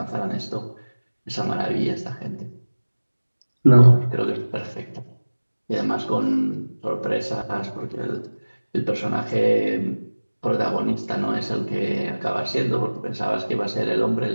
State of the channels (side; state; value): both; inverted; correlation -1.00